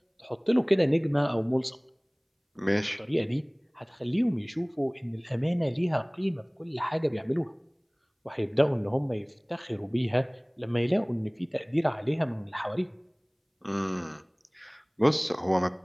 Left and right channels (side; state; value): both; identical; correlation 1.00